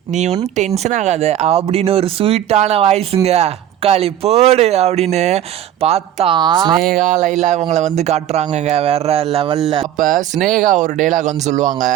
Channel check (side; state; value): left; quieter; 11.3 dB